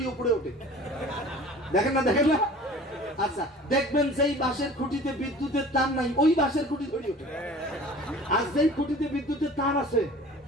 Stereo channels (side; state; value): both; normal; correlation 0.44